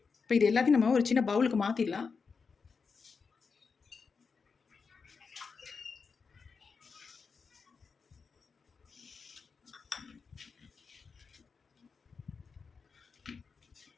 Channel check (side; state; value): right; quieter; 5.2 dB